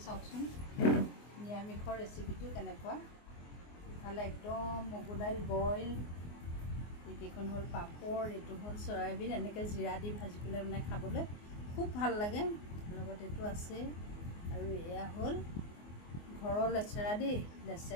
চাওকচোন নিৰামিষৰ ৰেচিপিটো কেনেকুৱা। ইফালে একদম মগু দাইল বইল, এইকেইখন হ'ল পাপৰ, এইটো হ'ল চয়াবিন, এনেকৈ জিৰা দি ভাজি পেলাই মানে খাবলৈ খুব ভাল লাগে। লগত এইটো আছে আৰু এয়া হ'ল ঘৰৰ লেচেৰা দেই,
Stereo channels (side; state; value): right; late; 24 ms